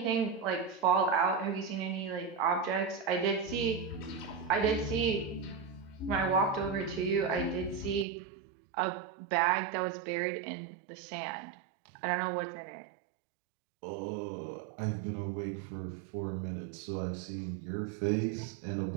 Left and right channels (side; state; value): left; drops out; at 8.1 s